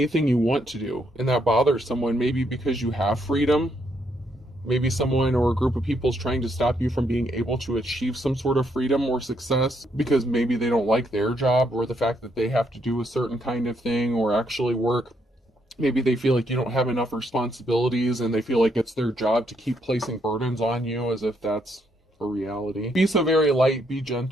you want to do. And that bothers someone, maybe because you have freedom. Maybe someone or a group of people is trying to stop you from being able to achieve some sort of freedom or success because maybe they don't like their job, or the fact that they have to do a certain kind of thing or actually work. Maybe they feel like you don't have enough responsibilities and they feel like it's their job to keep placing burdens on you as if that's a reality. Be so very light, be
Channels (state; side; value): normal; both; correlation 0.75